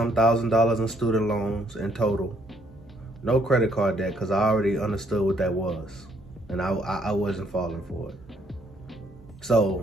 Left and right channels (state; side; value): normal; both; correlation 0.68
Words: $1,000 in student loans in total. No credit card debt because I already understood what that was. And I wasn't falling for it.